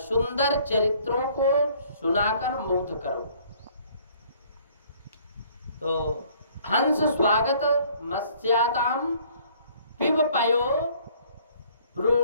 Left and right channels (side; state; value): both; inverted; correlation -0.59